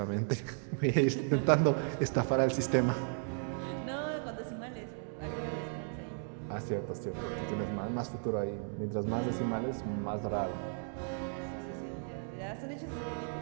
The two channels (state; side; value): silent; left; 54 dB below the other